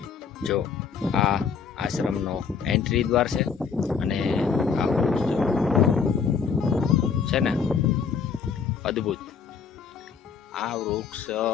જો આ આશ્રમનો એન્ટ્રી દ્વાર છે અને આ વૃક્ષ છે ને અદ્ભુત. આ વૃક્ષ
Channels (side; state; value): right; quieter; 6.1 dB